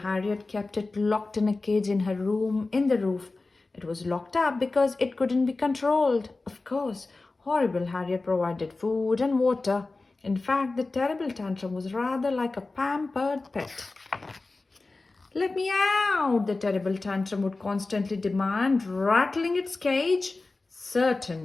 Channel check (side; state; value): right; quieter; 3.4 dB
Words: kept it locked in a cage in her room in the roof. It was locked up because it couldn't be controlled. Of course, Horrible Harriet provided food and water. In fact, the terrible tantrum was rather like a pampered pet. "Let me out," the terrible tantrum would constantly demand, rattling its cage.